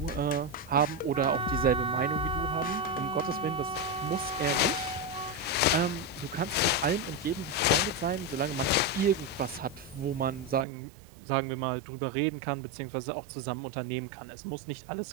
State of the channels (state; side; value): drops out; left; at 10.7 s